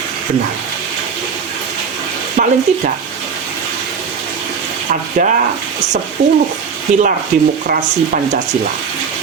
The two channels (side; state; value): left; quieter; 6.2 dB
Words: benar. Paling tidak ada 10 pilar demokrasi Pancasila.